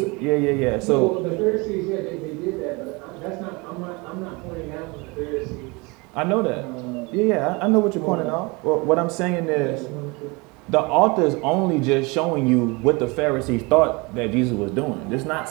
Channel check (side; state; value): left; quieter; 26.9 dB